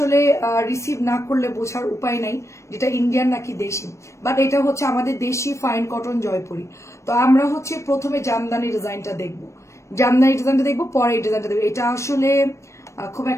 রিসিভ না করলে বোঝার উপায় নাই যেটা ইন্ডিয়ান নাকি দেশি, বাট এটা হচ্ছে আমাদের দেশি ফাইন কটন জয়পুরি। তো আমরা হচ্ছে প্রথমে জামদানি ডিজাইনটা দেখবো, পরে এই ডিজাইনটা দেখবো। এটা আসলে খুব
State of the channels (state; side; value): late; right; 0.14 ms